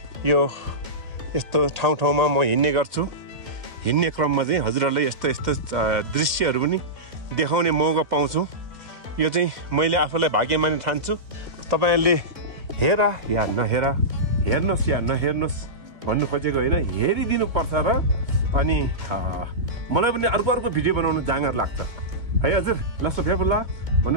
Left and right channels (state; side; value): late; left; 2.1 ms